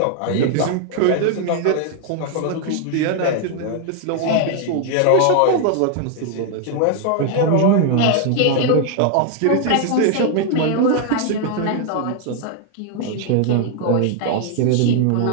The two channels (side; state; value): both; different; correlation 0.00